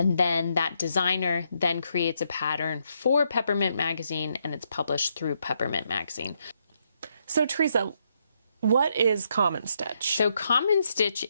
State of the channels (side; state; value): both; inverted; correlation -0.76